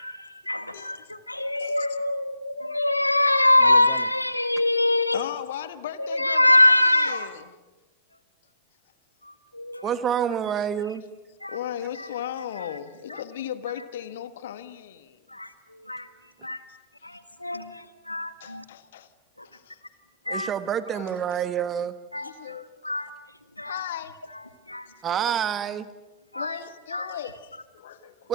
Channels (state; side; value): inverted; both; correlation -0.74